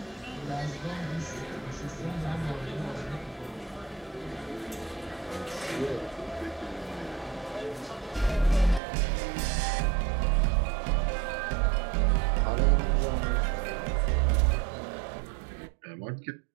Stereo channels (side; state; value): left; drops out; at 8.8 s